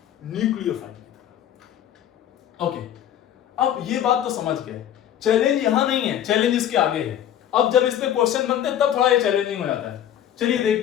न्यूक्लियोफाइल की तरह। ओके, अब ये बात तो समझ गए, चैलेंज यहां नहीं है, चैलेंज इसके आगे है। अब जब इस पे क्वेश्चन बनते हैं तब थोड़ा ये चैलेंजिंग हो जाता है। चलिए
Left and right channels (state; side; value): quieter; right; 10.7 dB